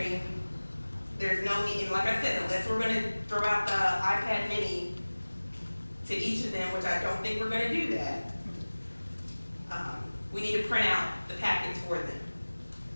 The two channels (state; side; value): inverted; both; correlation -1.00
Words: There's no need, and like I said, unless we're gonna throw out the iPad mini to each of them, which I don't think we're gonna do that, we need to print out the packets for them.